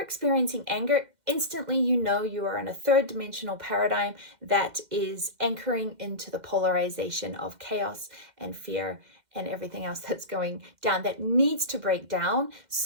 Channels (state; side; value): late; left; 2.0 ms